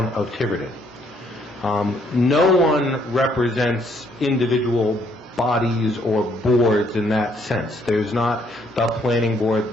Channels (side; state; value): both; normal; correlation 0.68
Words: of Tiverton. No one represents individual bodies or boards in that sense. There's not the planning